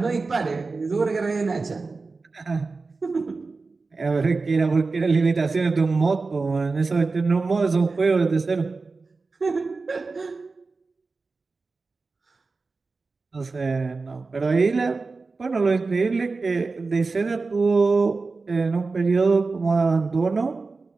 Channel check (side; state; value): left; quieter; 4.0 dB